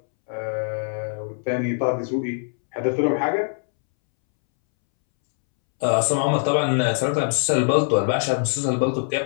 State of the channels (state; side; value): silent; right; 64 dB below the other